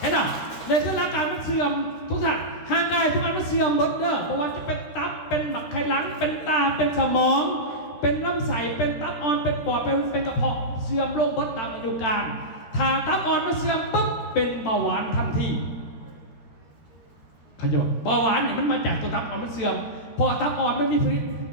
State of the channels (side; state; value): right; late; 13 ms